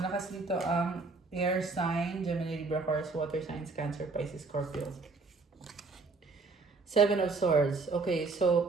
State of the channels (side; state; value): left; quieter; 3.9 dB